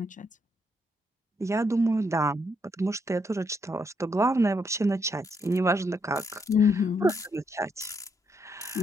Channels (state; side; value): normal; both; correlation 0.76